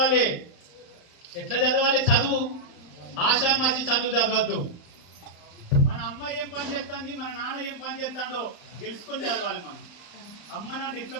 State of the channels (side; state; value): right; late; 35 ms